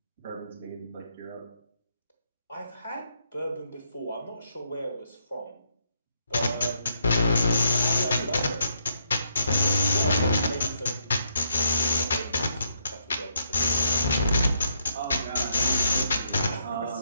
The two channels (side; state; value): both; inverted; correlation -0.75